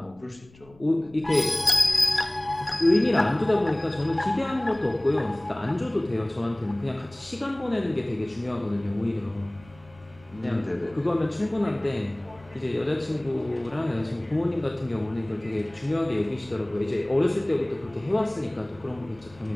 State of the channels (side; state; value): left; noise; rumble, 25 dB below the sound